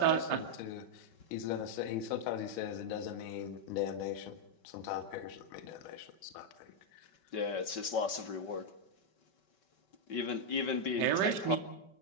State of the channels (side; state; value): right; late; 5.2 ms